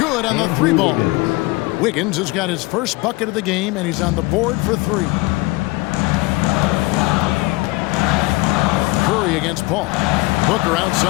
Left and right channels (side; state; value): right; quieter; 22.8 dB